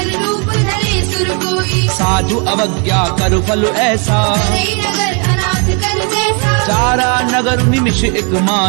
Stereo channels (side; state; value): left; quieter; 37.4 dB